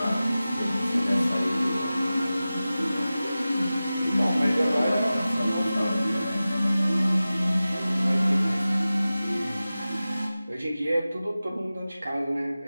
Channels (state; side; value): inverted; both; correlation -0.96